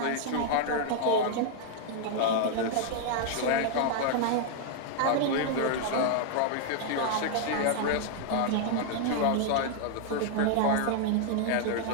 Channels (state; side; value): different; both; correlation 0.00